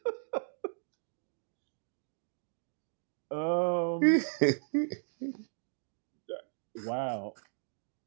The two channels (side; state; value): left; silent; digital silence